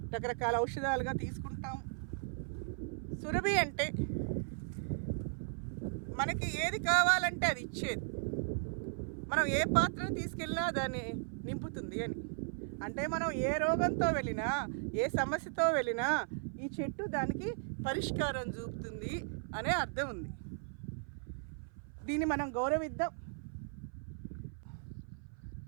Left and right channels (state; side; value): silent; left; 53 dB below the other